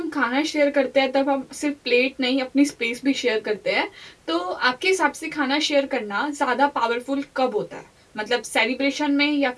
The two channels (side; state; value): both; identical; correlation 1.00